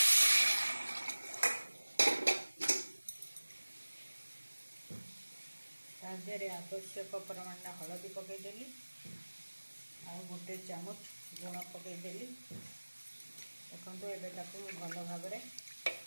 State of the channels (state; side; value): inverted; both; correlation -1.00